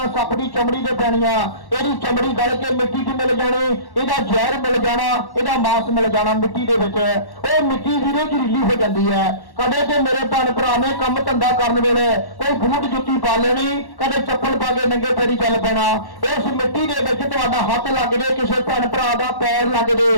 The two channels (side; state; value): right; late; 1.1 ms